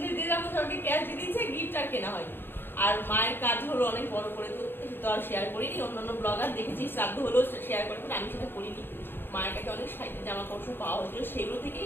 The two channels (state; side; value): late; right; 0.10 ms